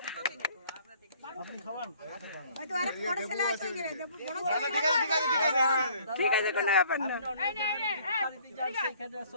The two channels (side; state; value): both; inverted; correlation -0.58